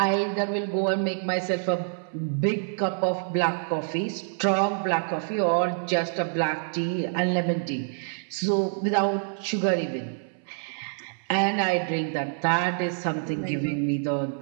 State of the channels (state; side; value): silent; left; 60 dB below the other